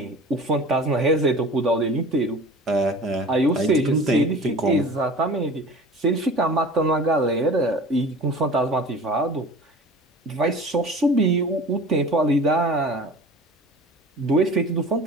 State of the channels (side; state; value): both; normal; correlation 0.40